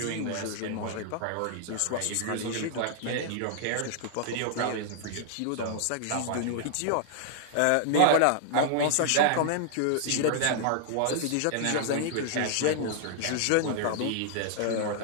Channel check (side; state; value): both; different; correlation -0.01